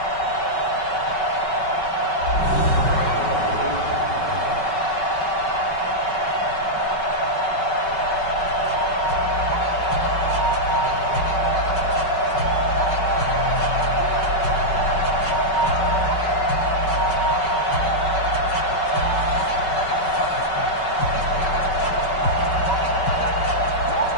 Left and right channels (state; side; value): late; right; 5.3 ms